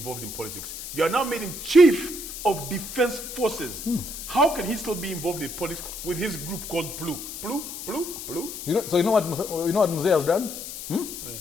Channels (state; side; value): noise; left; hiss, 9 dB below the sound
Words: in politics. You are now made him Chief of Defense Forces. How can he still be involved in politics with his group called PLU? PLU? You know what Mzee has done?